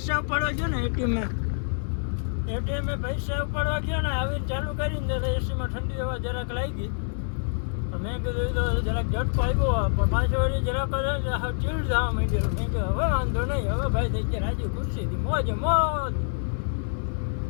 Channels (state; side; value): silent; right; digital silence